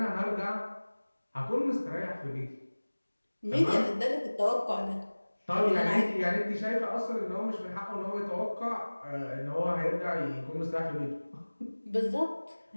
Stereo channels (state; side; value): inverted; both; correlation -1.00